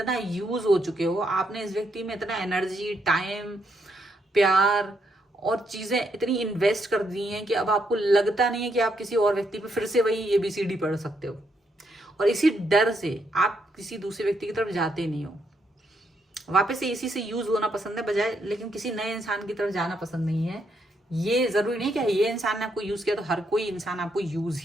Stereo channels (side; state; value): both; normal; correlation 0.77